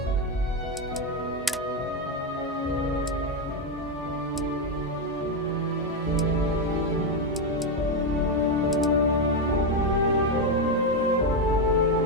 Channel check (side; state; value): both; normal; correlation 0.07